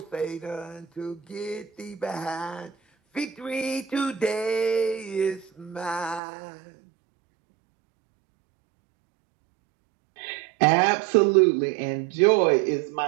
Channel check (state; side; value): drops out; left; at 6.2 s